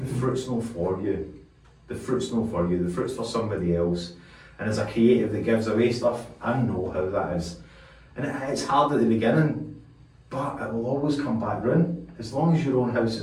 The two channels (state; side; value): identical; both; correlation 1.00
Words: fruit's not for you. The fruit's not for you. The fruit's for somebody else. And as a creative that gives away stuff, I know how that is. And it's hard at the beginning, but it will always come back round. As long as your own house